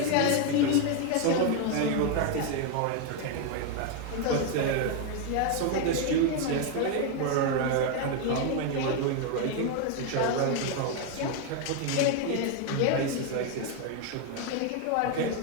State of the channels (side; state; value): both; different; correlation 0.01